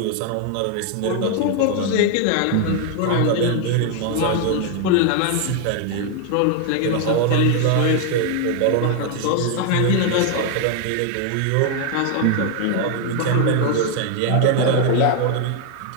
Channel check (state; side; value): different; both; correlation 0.00